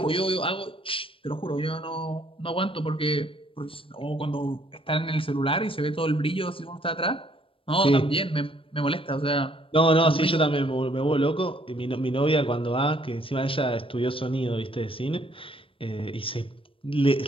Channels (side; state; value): right; late; 0.26 ms